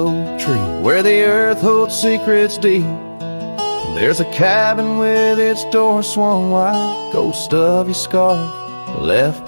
tree, where the earth holds secrets deep, there's a cabin with its door swung wide, ghost of your scarf left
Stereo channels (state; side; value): inverted; both; correlation -1.00